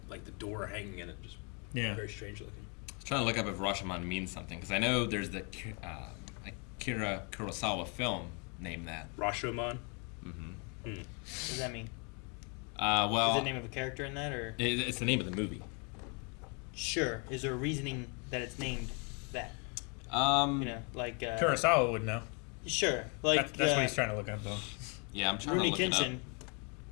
the door hanging in it, just Yeah. very strange looking. I was trying to look up if Rashomon means something because I know there's the Akira Kurosawa film named that. Rashomon. What does that mean? Well, Is it the name of a character in that, or it's the name of the movie. sure? Is there a reasoning that it's named that? Um, You know, like Kurosawa would know. sure, like That's what he's trying to look up, though. yeah, I'm trying Rooney to look it up. Kenshin.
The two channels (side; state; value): right; quieter; 34.9 dB